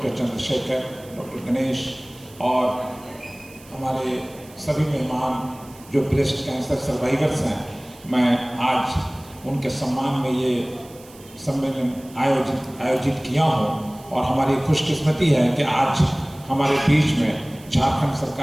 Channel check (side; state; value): right; noise; hiss, 23 dB below the sound